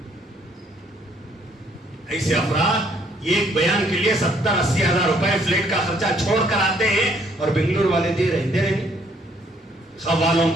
ایسے افراد یہ ایک بیان کے لیے 70-80 ہزار روپے فلیٹ کا خرچہ چھوڑ کر آتے ہیں اور بنگلور والے دے رہے ہیں، خوالوں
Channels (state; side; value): normal; both; correlation 0.66